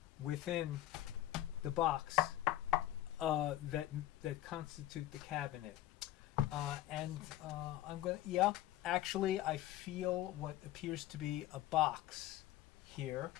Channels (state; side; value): quieter; right; 14.4 dB